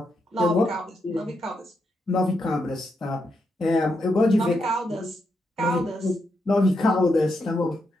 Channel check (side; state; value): both; normal; correlation 0.82